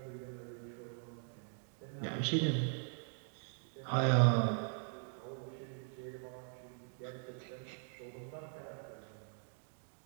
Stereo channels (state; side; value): silent; left; 51 dB below the other